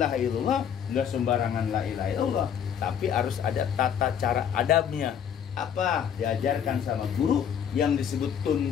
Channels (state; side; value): quieter; right; 8.4 dB